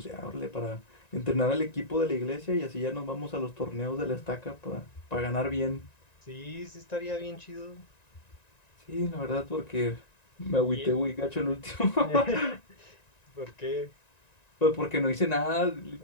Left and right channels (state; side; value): late; right; 1.9 ms